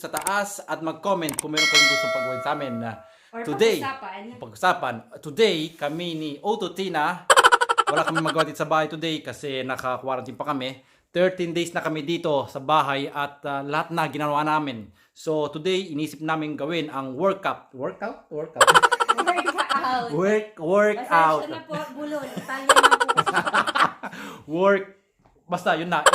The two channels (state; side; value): identical; both; correlation 1.00